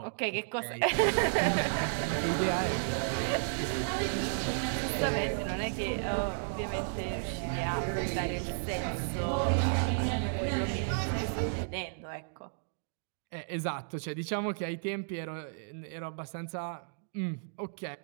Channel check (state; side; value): silent; left; digital silence